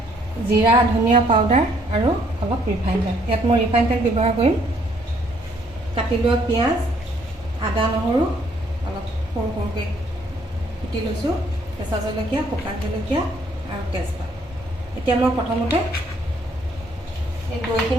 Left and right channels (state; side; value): normal; both; correlation 0.66